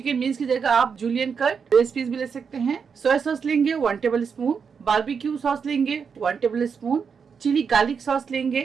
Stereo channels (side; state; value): left; quieter; 6.2 dB